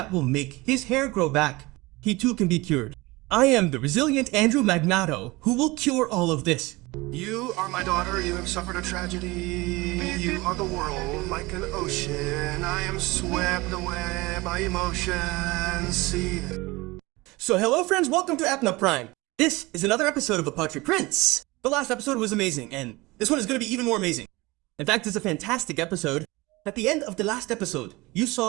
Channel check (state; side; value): quieter; left; 22.2 dB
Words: will make his hair grow back. He too can be cured. I am the resilient Andrew Magnato, who will cure all of this. You are my daughter, you have suffered a tragedy. You are the world like an ocean. I am swept away by emotions. See. So hello friends, welcome to Apna Prime. This is another episode of A Poetry Prince. The last episode was amazing, and this one is going to be even more amazing. In fact, it's a fantastic episode. At the end of the last episode, you